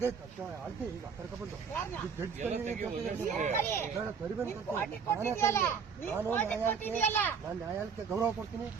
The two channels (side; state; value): left; quieter; 6.1 dB